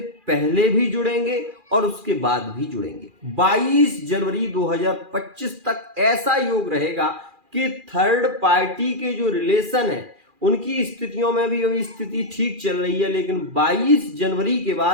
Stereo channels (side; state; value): left; late; 2.4 ms